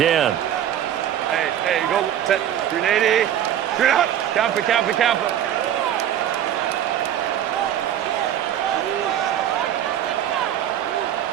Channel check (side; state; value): left; quieter; 10.7 dB